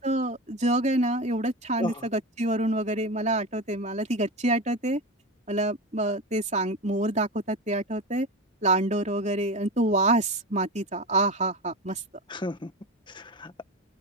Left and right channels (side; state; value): both; normal; correlation 0.24